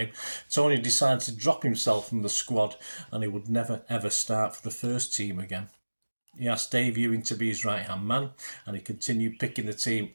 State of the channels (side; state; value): both; inverted; correlation -1.00